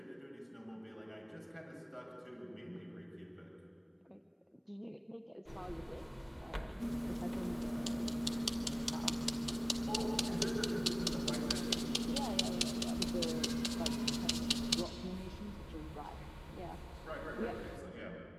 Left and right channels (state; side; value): identical; both; correlation 1.00